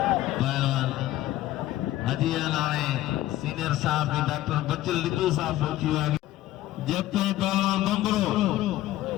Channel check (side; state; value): right; quieter; 15.0 dB